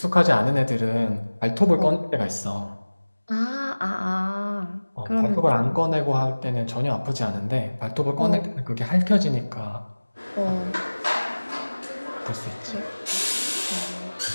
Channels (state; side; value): inverted; both; correlation -1.00